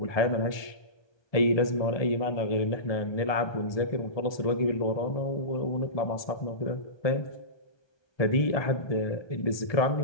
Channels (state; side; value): late; right; 1.2 ms